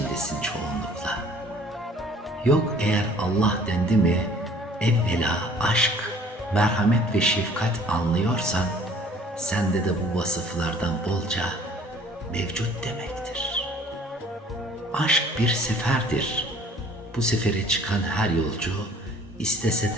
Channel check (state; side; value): normal; both; correlation 0.54